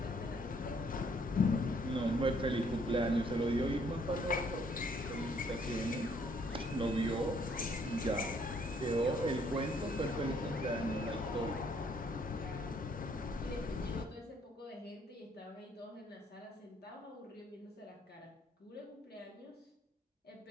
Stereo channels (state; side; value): normal; both; correlation 0.66